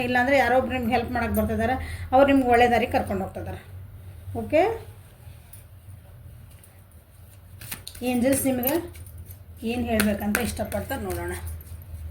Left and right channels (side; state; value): both; identical; correlation 1.00